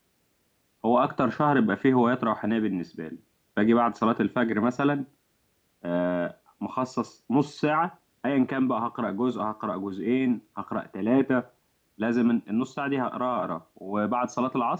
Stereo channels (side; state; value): both; identical; correlation 1.00